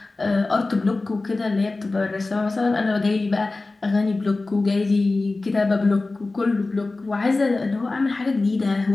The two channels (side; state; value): right; quieter; 3.3 dB